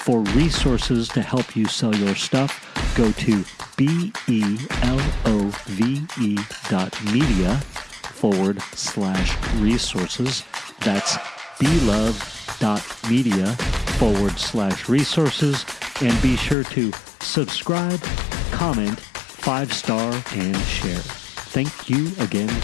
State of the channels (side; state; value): right; drops out; at 16.6 s